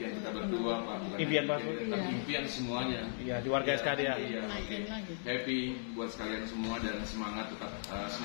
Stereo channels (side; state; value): right; silent; digital silence